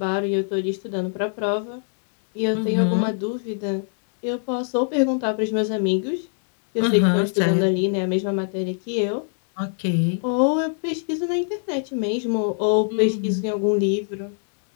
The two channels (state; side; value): silent; right; 59 dB below the other